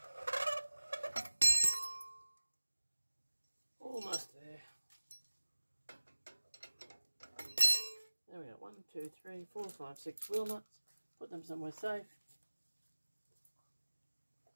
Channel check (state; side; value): inverted; both; correlation -1.00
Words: Almost there. There we go, 1, 2, 3, 4, 5, 6 wheel nuts. Put them somewhere safe.